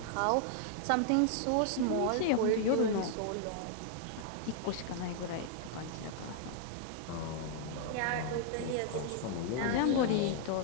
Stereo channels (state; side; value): different; both; correlation -0.01